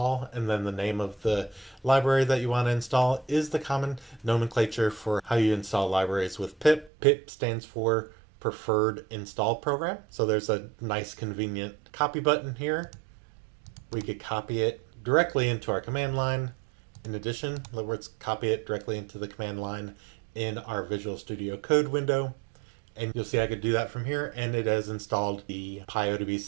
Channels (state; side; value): drops out; left; at 6.9 s